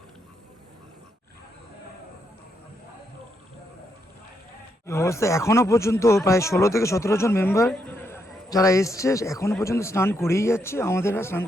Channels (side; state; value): both; normal; correlation 0.79